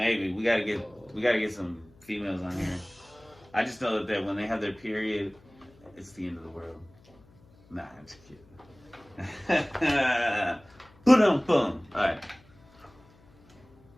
we gotta get some females on here. I just know that when they have their period, it's the end of the world. Nah, I'm just kidding. Boom, boom. All right.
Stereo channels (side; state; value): left; noise; hum, 28 dB below the sound